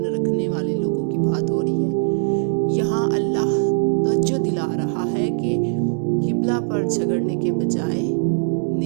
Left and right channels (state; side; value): silent; left; digital silence